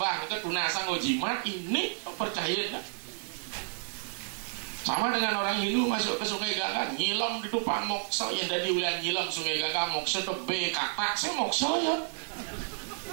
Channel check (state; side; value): silent; left; 57 dB below the other